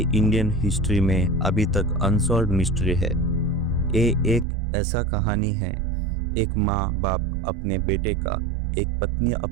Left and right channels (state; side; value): drops out; left; at 4.5 s